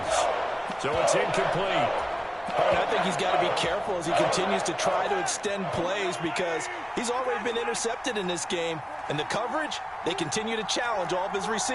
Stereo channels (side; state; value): both; identical; correlation 1.00